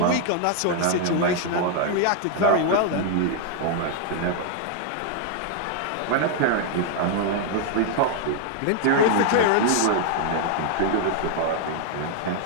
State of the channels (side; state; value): both; different; correlation 0.00